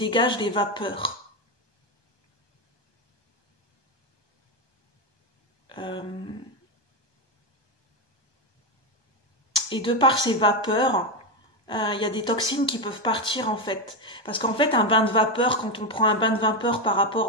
des vapeurs. Et de par ces vapeurs, il y a des toxines qui peuvent partir en fait. Parce qu'en fait, un bain de vapeur, quand on prend un bain de vapeur par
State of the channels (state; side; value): late; right; 1.2 ms